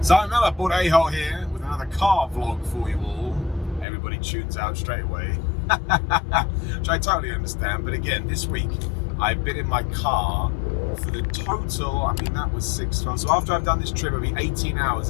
Simon Miller, Bud A-Hole here with another car vlog for you all. Everybody tunes out straight away, which I totally understand. But again, this week I've been in my car for the total, I mean that was 6 months. So after I've done this trip, it'll be 18 hours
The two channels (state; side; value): drops out; right; at 3.9 s